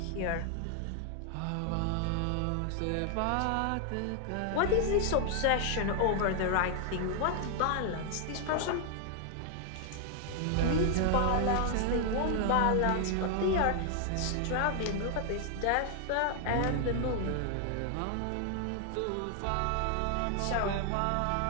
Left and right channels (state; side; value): different; both; correlation 0.00